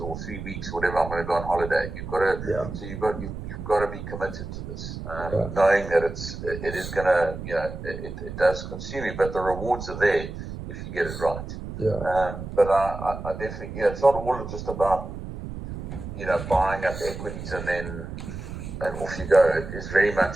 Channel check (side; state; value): right; noise; rumble, 8 dB below the sound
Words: 3 weeks or whatever. I'm going to go on holiday. You've got to, so you've got to be committed to this, knowing that it is going to, it does consume you, but the rewards are there if you get it right. Yeah. But I definitely, it's not all just about, buying up equities and off you go. It is very